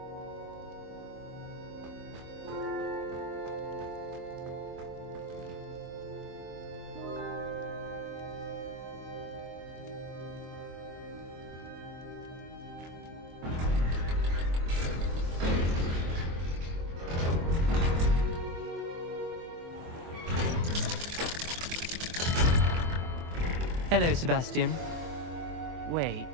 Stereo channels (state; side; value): late; left; 24 ms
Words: Hello, Sebastian. Wait.